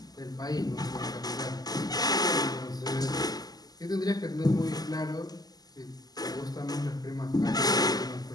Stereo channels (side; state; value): right; late; 0.19 ms